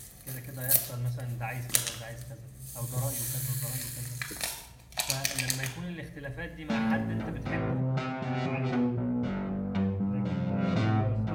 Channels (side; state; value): both; identical; correlation 1.00